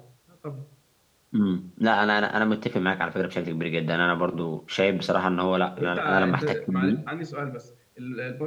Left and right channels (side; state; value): both; identical; correlation 1.00